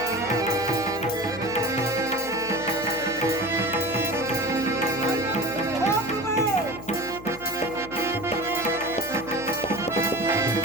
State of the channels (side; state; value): left; noise; hum, 15 dB below the sound